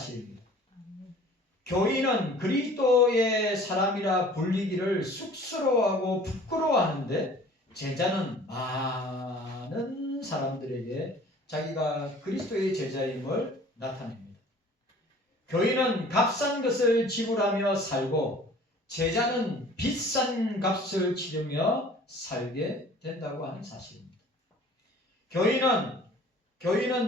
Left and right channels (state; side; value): normal; both; correlation 0.49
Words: 교인은 그리스도의 사람이라 불리기를 쑥스러워하고 부끄러워하는데 제자는 많은 사람들에게 자기가 그리스도의 제자임을 나타냅니다. 교인은 값싼 것을 지불하며 살고 제자는 비싼 값을 치르며 살게 된다고 하는 사실입니다.